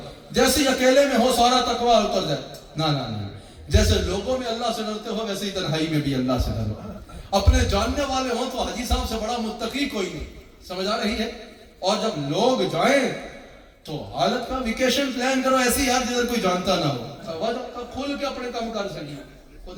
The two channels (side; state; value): both; identical; correlation 1.00